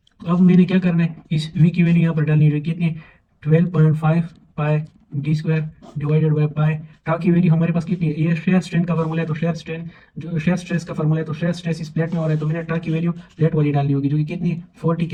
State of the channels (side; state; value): both; identical; correlation 1.00